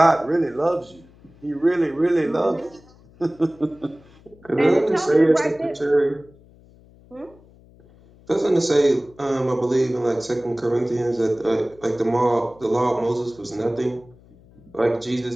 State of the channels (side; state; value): left; noise; hum, 26 dB below the sound